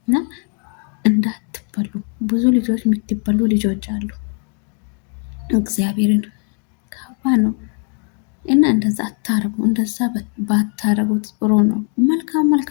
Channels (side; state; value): right; quieter; 39.8 dB